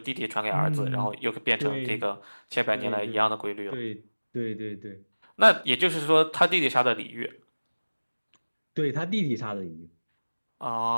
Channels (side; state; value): both; inverted; correlation -1.00